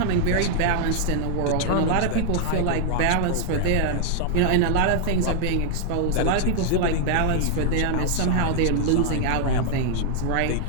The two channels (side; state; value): both; different; correlation 0.00